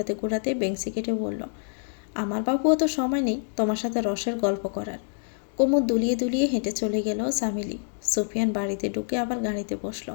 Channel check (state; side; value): silent; right; 60 dB below the other